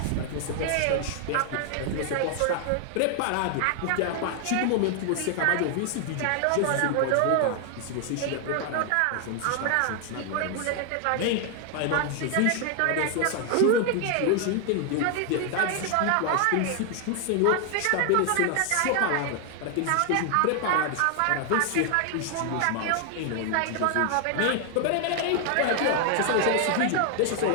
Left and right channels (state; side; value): different; both; correlation 0.00